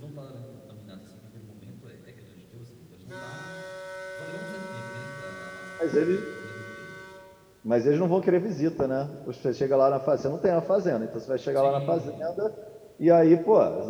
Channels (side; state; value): both; identical; correlation 1.00